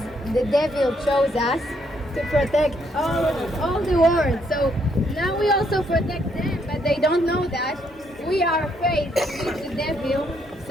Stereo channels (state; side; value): normal; both; correlation 0.72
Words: the devil chose us to protect all the world. So now we also protect them, but they don't know that. We are afraid to meet the devil,